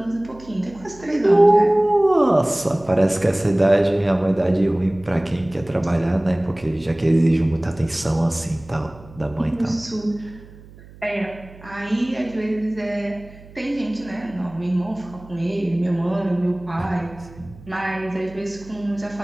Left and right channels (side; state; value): right; noise; hum, 21 dB below the sound